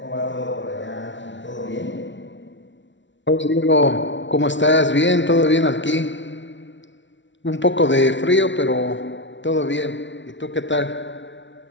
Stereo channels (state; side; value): late; right; 0.54 ms